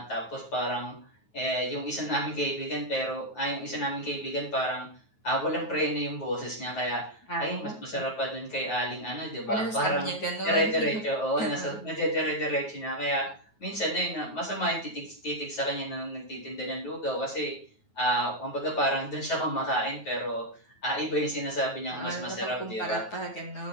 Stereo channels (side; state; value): right; late; 9.3 ms